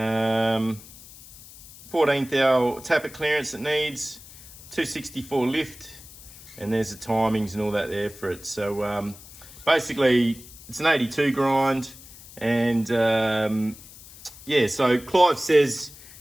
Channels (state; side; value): noise; left; hiss, 19 dB below the sound